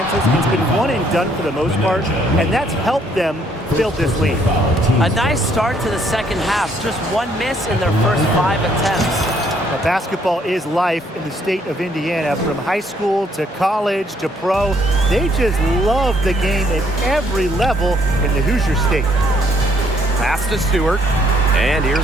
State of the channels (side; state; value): both; normal; correlation 0.67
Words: It's been one and done for the most part, and that's helped them build this lead. A nice start to the second half. Just one miss in their first 5 attempts. Now, basketball is life in the state of Indiana. From high school to college to pro, they just love the game at every level in the Hoosier State. Pass to Stewart. And